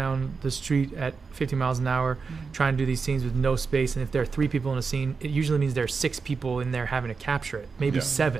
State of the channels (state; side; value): quieter; left; 4.9 dB